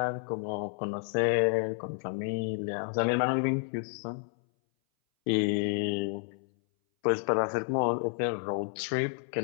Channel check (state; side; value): silent; right; 58 dB below the other